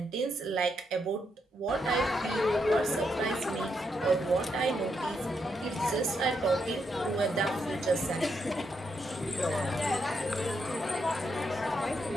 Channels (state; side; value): normal; both; correlation 0.80